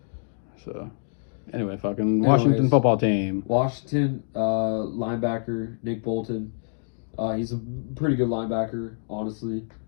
So, anyway, fucking Washington football team. Washington linebacker Nick Bolton. He's a pretty good linebacker, honestly.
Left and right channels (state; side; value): silent; right; digital silence